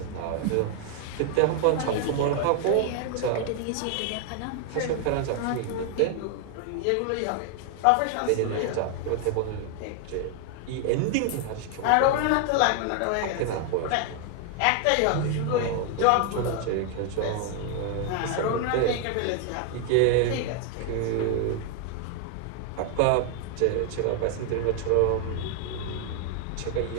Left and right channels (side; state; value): both; different; correlation 0.00